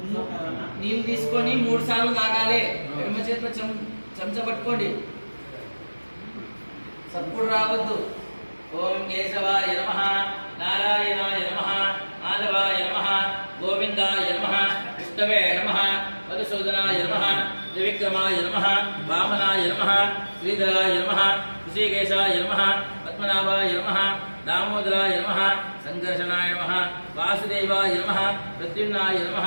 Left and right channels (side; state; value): both; inverted; correlation -1.00